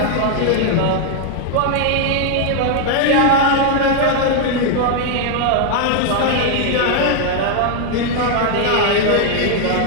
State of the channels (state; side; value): different; both; correlation 0.00